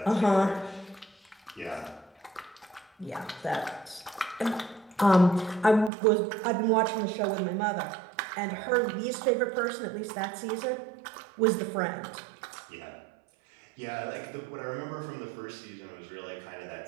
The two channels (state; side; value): drops out; left; at 5.9 s